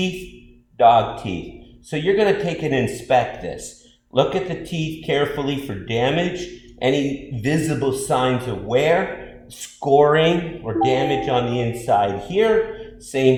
dog teeth. So you're going to take and inspect this. Look at the teeth carefully for damage, any visible signs of wear, scoring or damage on the inside here.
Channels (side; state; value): both; identical; correlation 1.00